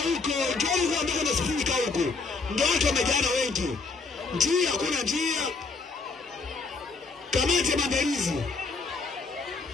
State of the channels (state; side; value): quieter; right; 4.2 dB